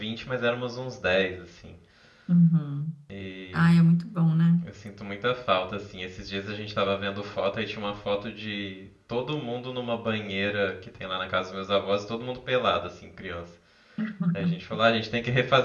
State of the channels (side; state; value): both; identical; correlation 1.00